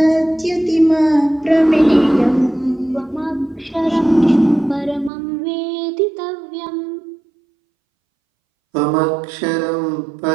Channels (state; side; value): drops out; left; at 5.1 s